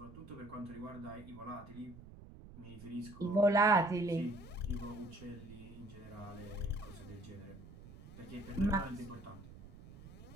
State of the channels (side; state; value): right; noise; rumble, 16 dB below the sound